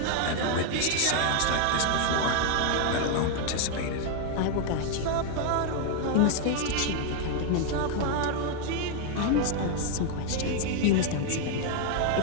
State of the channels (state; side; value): different; both; correlation 0.01